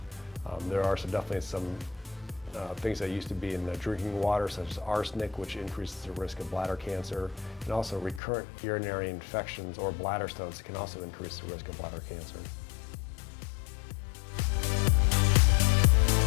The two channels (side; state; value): right; drops out; at 8.2 s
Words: There are definitely some things that used to be in the drinking water, such as arsenic, which increases the risk of bladder cancer, and also recurrent urinary infections or bladder stones can also increase the risk of bladder cancer.